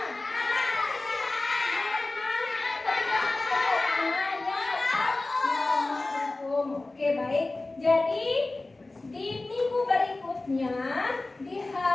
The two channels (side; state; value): right; quieter; 3.1 dB